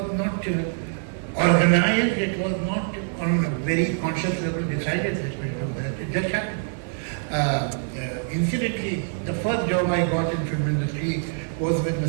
not organized, it was not on a very conscious level decided that we do that. It just happened. Incidentally, the first job I got in film industry was with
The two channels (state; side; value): silent; left; 62 dB below the other